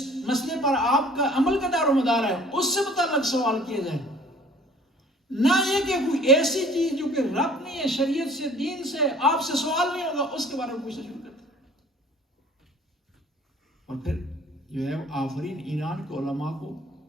مسئلے پر آپ کا عمل کا دار و مدار ہے، اس سے متعلق سوال کیا جائے، نہ یہ کہ کوئی ایسی چیز جو کہ رب نہیں ہے شریعت سے، دین سے، آپ سے سوال نہیں ہوگا اس کے بارے میں پوچھنا شروع کرتے ہیں۔ اور پھر جو ہے آفرین ایران کے علماء کو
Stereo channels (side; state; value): both; normal; correlation 0.51